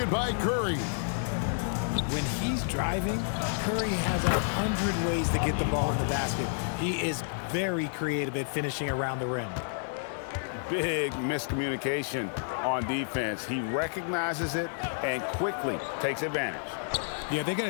by Curry. When he's driving, Curry has 100 ways to get the ball in the basket. He is very creative at finishing around the rim. Big miscommunication on defense. He recognizes it and quickly takes advantage. Yeah, they're going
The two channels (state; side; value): silent; right; digital silence